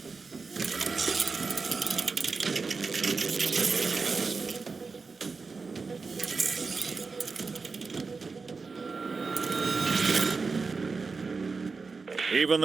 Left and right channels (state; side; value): quieter; left; 4.5 dB